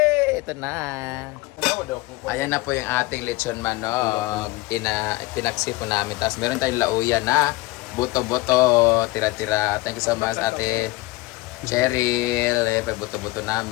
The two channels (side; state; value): right; quieter; 20.9 dB